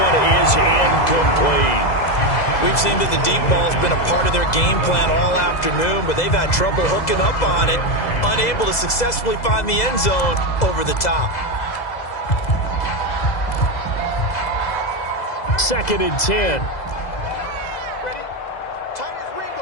is incomplete. We've seen that the deep ball's been a part of their game plan all afternoon, but they've had trouble hooking up on it, unable to successfully find the end zone over the top. 2nd and 10. Ready? Tight as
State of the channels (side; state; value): right; late; 2.0 ms